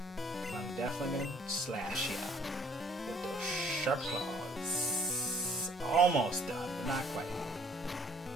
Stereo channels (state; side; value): normal; both; correlation 0.60